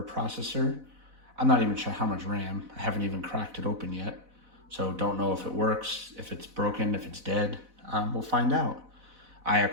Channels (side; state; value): left; late; 4.0 ms